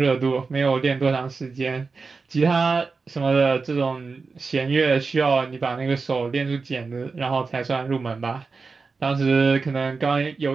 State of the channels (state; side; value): quieter; left; 4.4 dB